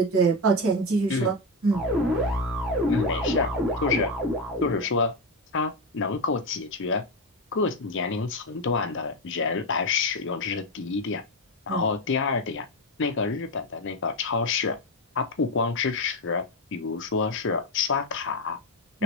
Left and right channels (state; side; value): normal; both; correlation 0.11